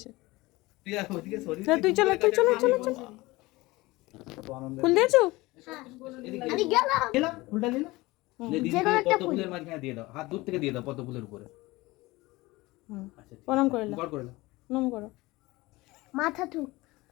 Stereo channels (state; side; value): quieter; right; 20.9 dB